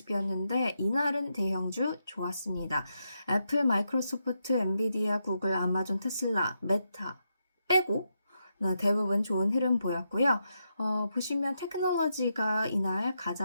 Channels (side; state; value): both; inverted; correlation -0.83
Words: 이날은 대형주 좋았습니다. 애플, 마이크로소프트, 엔비디아, 구글, 아마존, 테슬라, 메타 빼고 대부분 좋은 흐름 보였고요. 보시면 테크놀로지가 이날